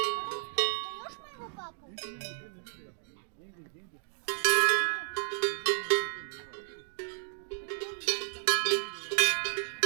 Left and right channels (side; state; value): left; silent; digital silence